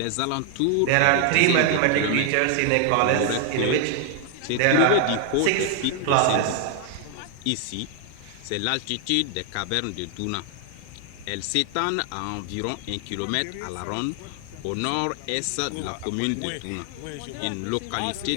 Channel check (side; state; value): both; different; correlation 0.00